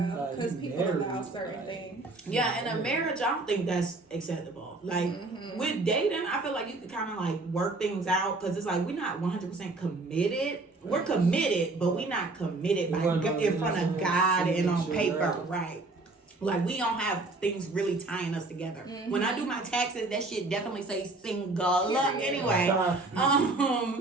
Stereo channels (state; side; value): quieter; left; 3.2 dB